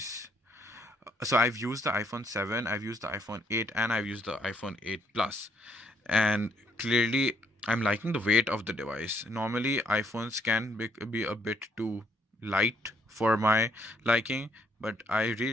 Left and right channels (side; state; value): both; normal; correlation 0.70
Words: So I've used the iPhone 7, I've used the iPhone 8, and I've used the iPhone 8 Plus, and clearly I'm liking the weight of the device. Normally iPhones can be a bit too light for my liking, but I